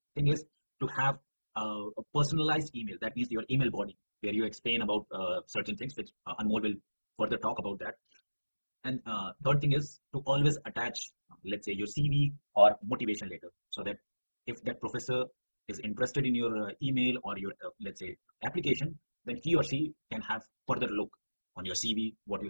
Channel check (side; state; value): both; inverted; correlation -1.00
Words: thing is to have a personalized email. That means your email body where you explain about certain things, which Anmol will further talk about that. And third thing is to always attach, let's say, your CV or motivation letter, so that if that professor is interested in your email or your, let's say, application, then he or she can have further look on your CV, what you